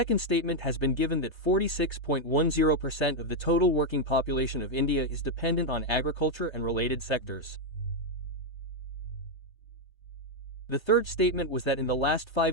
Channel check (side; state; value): right; late; 1.3 ms